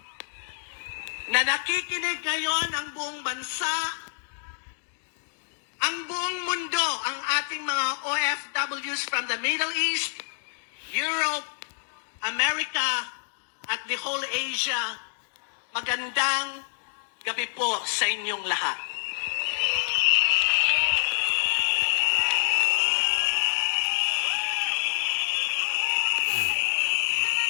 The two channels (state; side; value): silent; right; digital silence